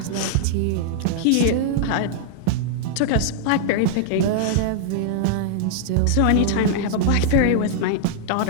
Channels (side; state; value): both; different; correlation -0.01